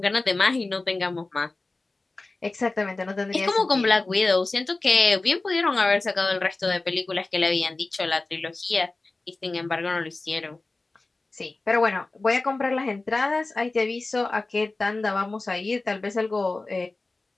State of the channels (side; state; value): right; quieter; 3.3 dB